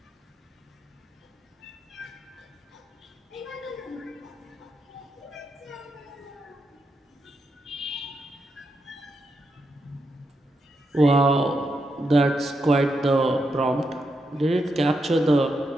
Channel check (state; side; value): normal; both; correlation 0.83